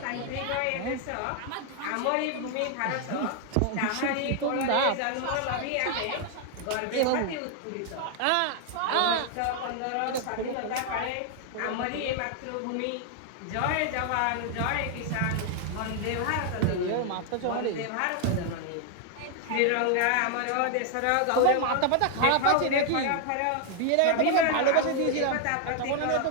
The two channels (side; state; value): both; different; correlation 0.00